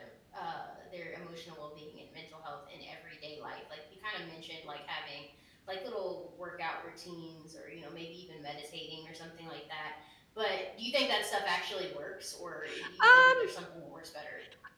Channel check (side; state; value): both; identical; correlation 1.00